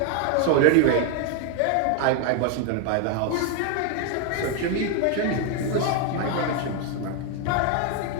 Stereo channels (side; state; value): both; different; correlation 0.00